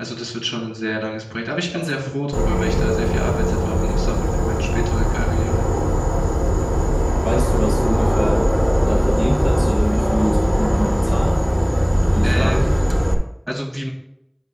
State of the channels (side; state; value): both; identical; correlation 1.00